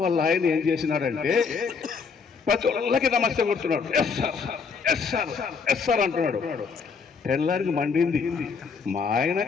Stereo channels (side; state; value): right; quieter; 5.4 dB